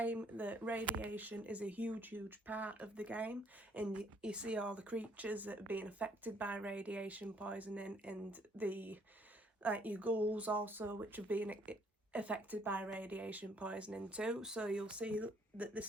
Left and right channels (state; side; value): normal; both; correlation 0.65